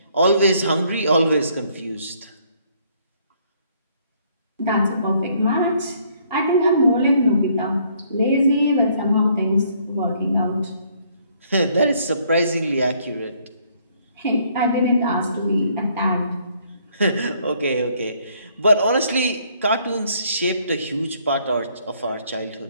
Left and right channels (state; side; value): inverted; both; correlation -0.66